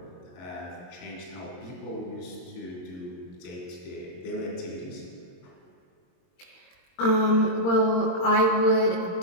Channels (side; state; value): right; late; 22 ms